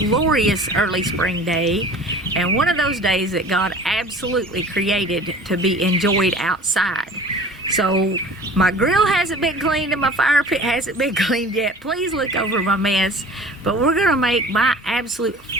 early spring day, and one of those days that God absolutely created to be enjoyed outside. So my grill hasn't been cleaned and my fire pit hasn't been cleaned yet. Please look over my mess. But we're gonna make my absolute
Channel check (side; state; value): both; normal; correlation 0.44